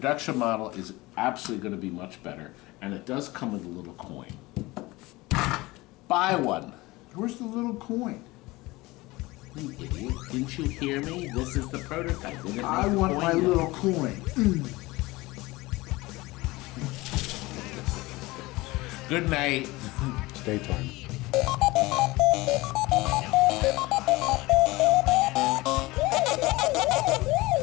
model is absolutely going to be much better, and it does come with a little coin. Buy one. Where's the little coin? You idiot. Didn't you hear me? This is the prototype. They're gonna I make the want coin my yet. little coin. Good night. It's daytime.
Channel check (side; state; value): right; quieter; 21.0 dB